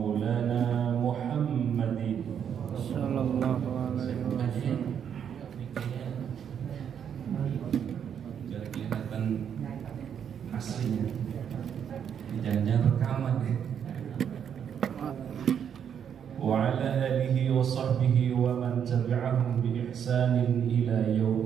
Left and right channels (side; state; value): left; quieter; 8.3 dB